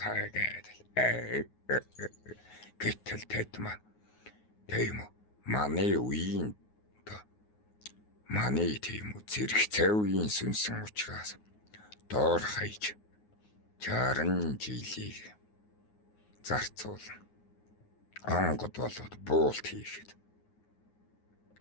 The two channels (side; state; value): right; late; 9.5 ms